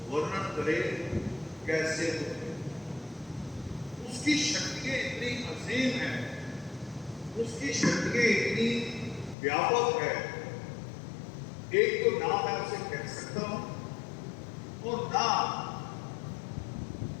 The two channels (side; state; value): right; drops out; at 9.3 s